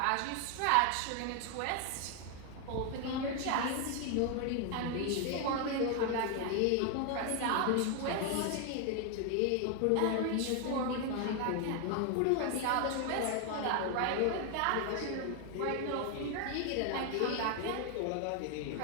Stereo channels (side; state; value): both; different; correlation 0.00